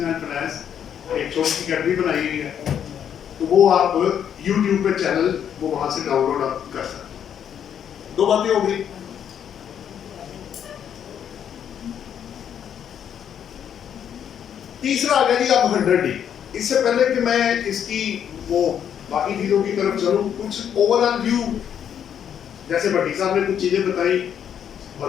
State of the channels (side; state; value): right; quieter; 8.9 dB